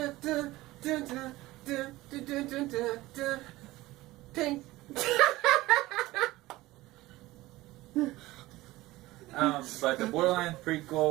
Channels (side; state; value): left; quieter; 18.4 dB